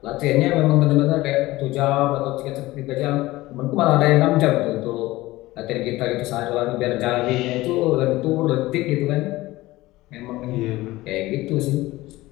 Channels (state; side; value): quieter; right; 18.4 dB